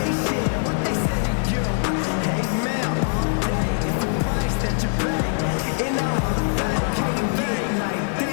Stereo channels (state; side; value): silent; right; 64 dB below the other